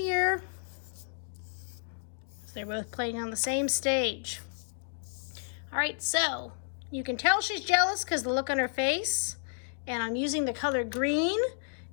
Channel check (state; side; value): silent; right; digital silence